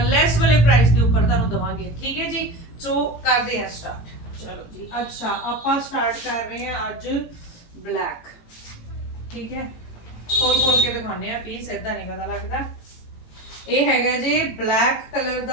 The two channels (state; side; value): late; right; 17 ms